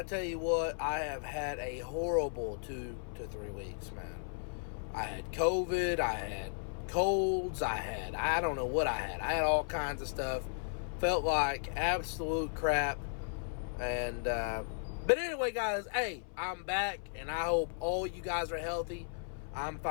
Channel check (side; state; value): right; silent; 54 dB below the other